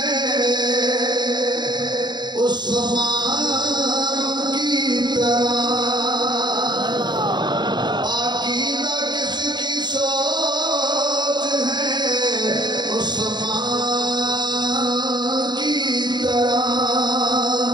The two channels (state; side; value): late; left; 0.21 ms